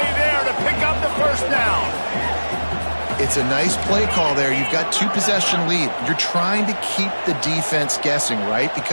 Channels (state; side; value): inverted; both; correlation -1.00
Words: there to pick up the first down. It's a nice play call there. You've got 2-possession lead. You're trying to keep the defense guessing, right?